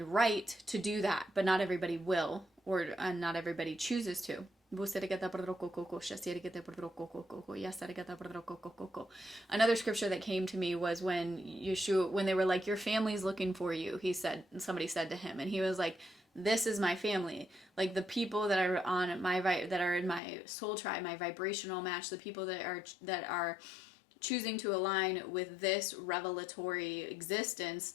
right to do that, but not everybody will, or not everybody chooses to. Another scripture that came to me was when Yeshua, when they were like, your family's looking for you, somebody said to him, and he was like, this is my family. Like the people that are on that are in my soul tribe, my vibrational match, the people that are choosing to align with this revelatory existence,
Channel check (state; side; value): drops out; right; at 20.2 s